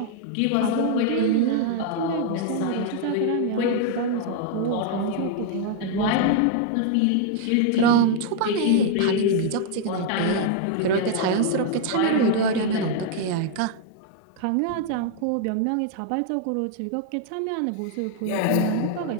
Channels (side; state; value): both; different; correlation 0.00